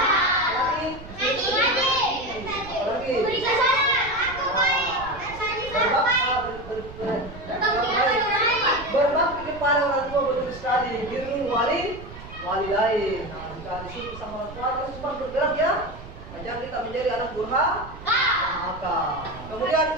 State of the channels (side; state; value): right; noise; rumble, 15 dB below the sound